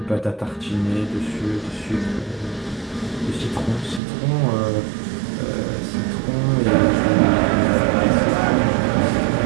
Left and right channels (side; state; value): left; drops out; at 4.0 s